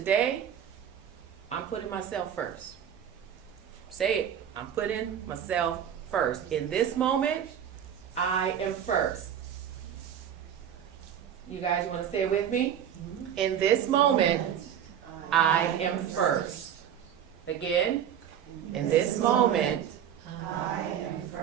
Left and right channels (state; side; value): quieter; left; 9.3 dB